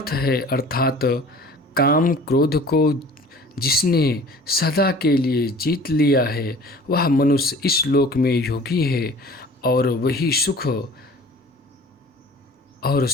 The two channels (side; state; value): both; normal; correlation 0.46